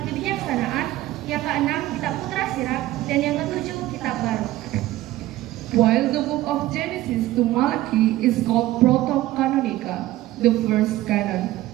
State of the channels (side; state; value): left; quieter; 15.7 dB